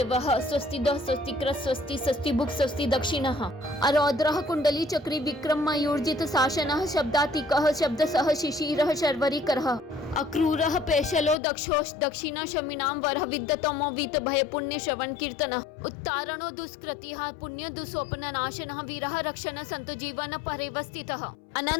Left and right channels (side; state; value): right; drops out; at 11.4 s